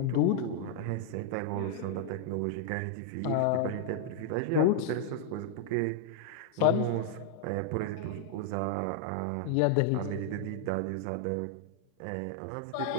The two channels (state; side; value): different; both; correlation -0.01